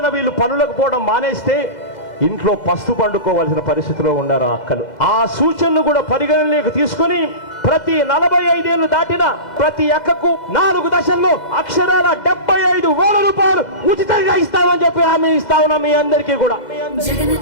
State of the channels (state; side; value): late; right; 2.0 ms